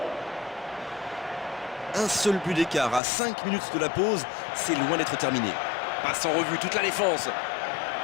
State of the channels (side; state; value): right; drops out; at 3.0 s